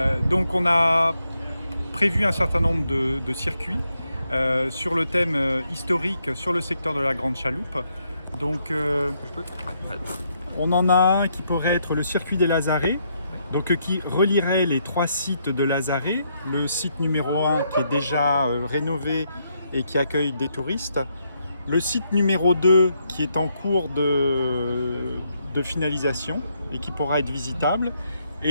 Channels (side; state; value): both; inverted; correlation -0.76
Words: Donc on a prévu un certain nombre de circuits sur le thème historique sur le secteur de la Grande Chaloupe. Donc on en a un qui pourrait être le circuit des Lazarets, donc qui relierait les 3 sites de Lazarets, le site numéro 1 qui est déjà rénové et qui accueille des touristes, le site numéro 2 qui est en cours de finalisation et qui pourra être visitable,